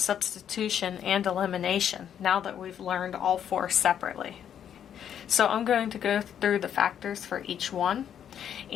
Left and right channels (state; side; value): quieter; right; 9.3 dB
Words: and elimination now that we've learned all 4 separately? So I'm going to go through the factors for each one,